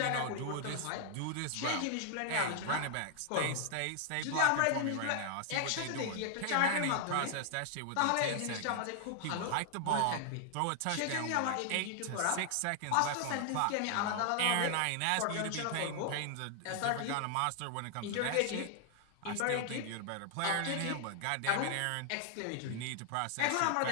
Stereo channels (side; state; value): both; different; correlation 0.00